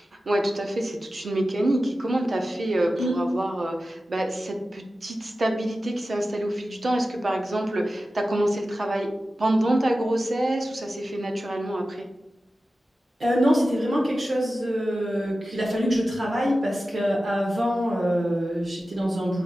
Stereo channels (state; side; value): normal; both; correlation 0.94